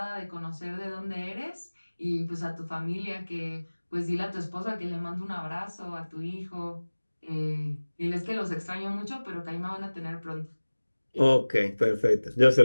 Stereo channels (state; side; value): inverted; both; correlation -1.00